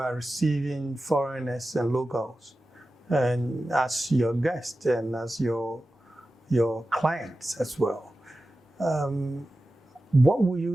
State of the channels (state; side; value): normal; both; correlation 0.94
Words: receiving foreigners and locals, and as your guests and as your clients as well. What will